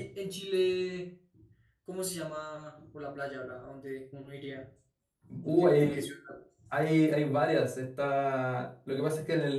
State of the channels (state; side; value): identical; both; correlation 1.00